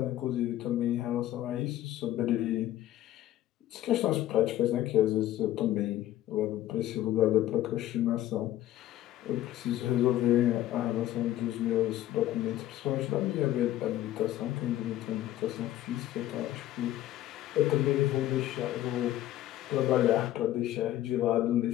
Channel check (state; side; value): quieter; right; 13.6 dB